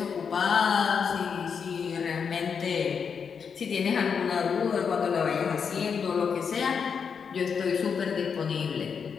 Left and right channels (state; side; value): quieter; right; 6.4 dB